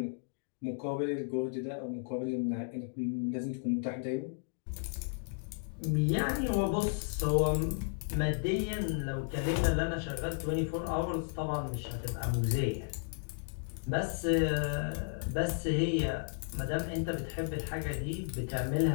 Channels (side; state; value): right; silent; digital silence